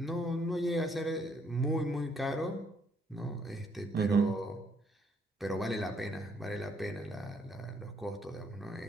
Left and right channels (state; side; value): normal; both; correlation 0.69